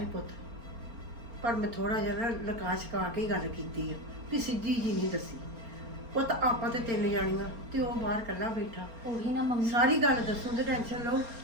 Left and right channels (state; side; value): late; left; 4.3 ms